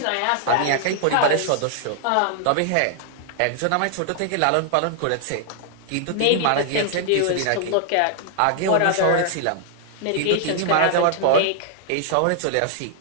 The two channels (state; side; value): different; both; correlation 0.00